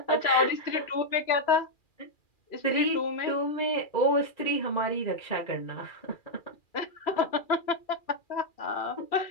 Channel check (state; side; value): late; right; 2.4 ms